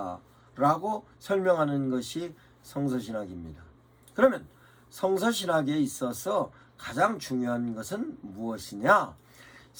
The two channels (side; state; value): both; identical; correlation 1.00